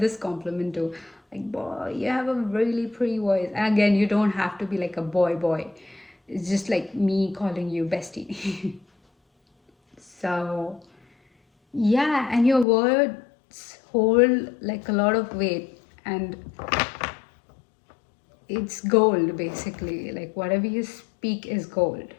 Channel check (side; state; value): right; drops out; at 12.7 s